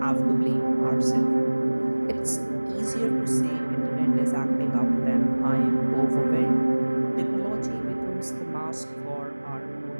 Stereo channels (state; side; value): inverted; both; correlation -1.00